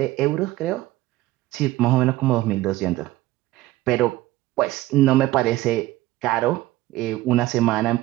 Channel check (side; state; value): left; quieter; 16.4 dB